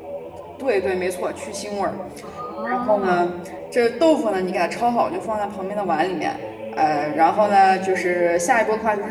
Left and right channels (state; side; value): identical; both; correlation 1.00